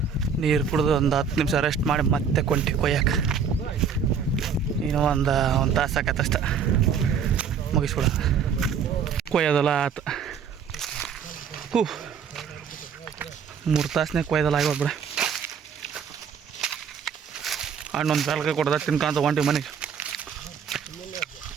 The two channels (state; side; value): quieter; left; 6.8 dB